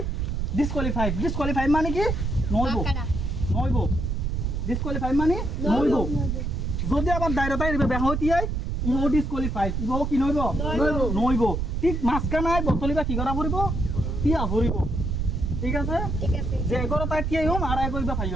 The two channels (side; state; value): right; noise; rumble, 1 dB below the sound